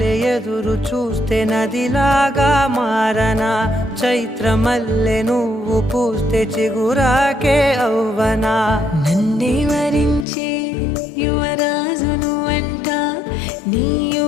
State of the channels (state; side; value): drops out; right; at 10.2 s